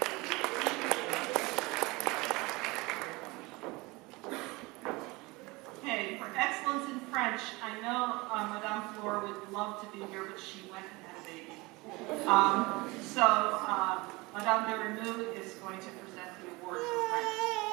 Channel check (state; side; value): quieter; left; 23.7 dB